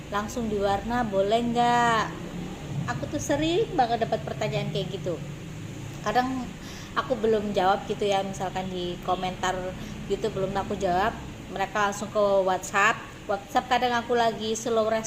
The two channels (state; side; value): identical; both; correlation 1.00